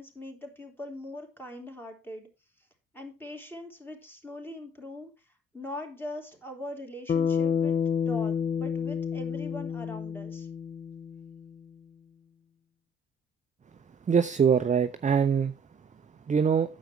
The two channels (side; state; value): both; normal; correlation 0.59